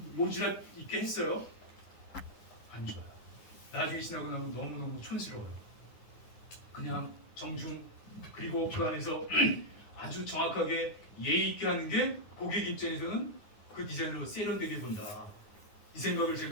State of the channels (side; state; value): right; late; 9.6 ms